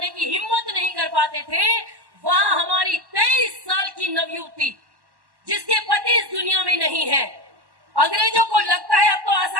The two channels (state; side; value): late; left; 1.1 ms